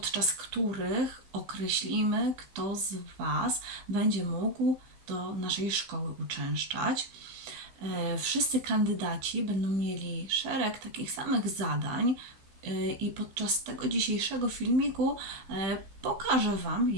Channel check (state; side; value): late; left; 15 ms